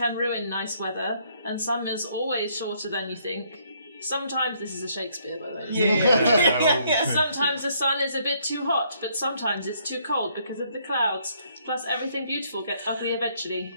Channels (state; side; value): inverted; both; correlation -0.68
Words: ruin nice weather, and summer's always shorter than you think. Sometimes, this is a Shakespeare, by the way. Yeah. Sometimes the sun is a bit too hot, but sometimes it's too cold because of the clouds. Plus, everything beautiful gets ugly eventually.